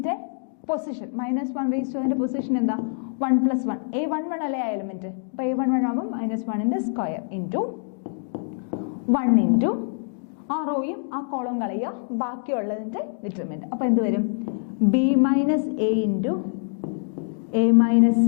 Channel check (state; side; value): silent; right; digital silence